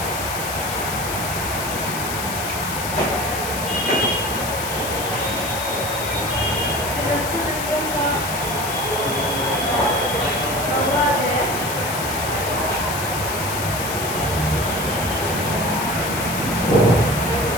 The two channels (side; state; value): left; noise; hiss, 6 dB below the sound